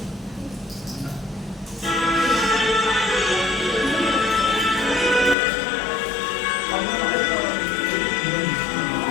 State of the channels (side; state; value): right; drops out; at 5.4 s